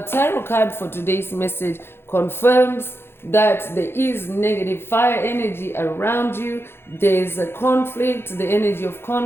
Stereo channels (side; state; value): right; late; 0.11 ms